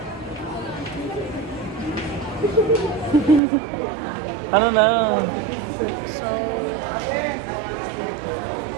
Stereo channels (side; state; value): left; drops out; at 3.4 s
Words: Ano na? So...